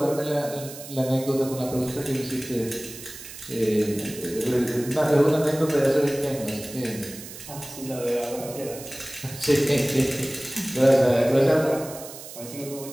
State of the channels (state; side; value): noise; right; hiss, 13 dB below the sound